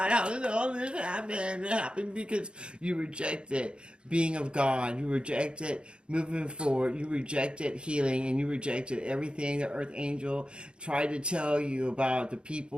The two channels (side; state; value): left; late; 0.054 ms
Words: how did all this happen? It happened because you rejected being of God. You rejected moving forward. You rejected healing, and you rejected everything the earth angel tried to tell you about the